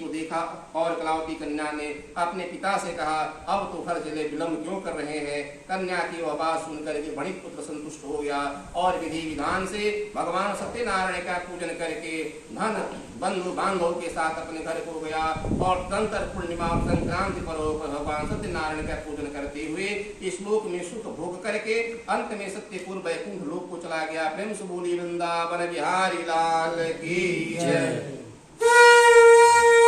देखा। और कलावती कन्या ने अपने पिता से कहा, अब तो घर चले विलम्ब क्यों कर रहे हैं। कन्या की वह बात सुनकर के वणिक पुत्र संतुष्ट हो गया और विधि विधान से भगवान सत्यनारायण का पूजन करके धन बंधु बांधवों के साथ अपने घर को गया और तंत्र पूर्णिमा संक्रांति पर्व पर भगवान सत्यनारायण का पूजन करते हुए इस लोक में सुख भोग करके अंत में सत्यपुर वैकुंठ लोक को चला गया। प्रेम से बोली वृंदावन बिहारी लाल की जय।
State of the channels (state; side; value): identical; both; correlation 1.00